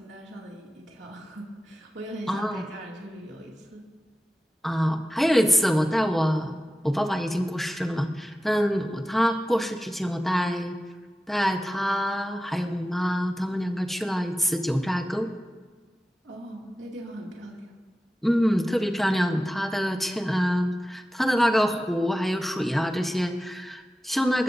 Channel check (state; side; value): normal; both; correlation 0.94